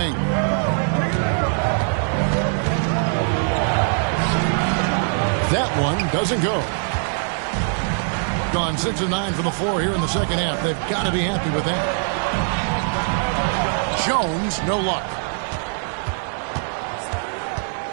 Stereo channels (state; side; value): silent; left; 57 dB below the other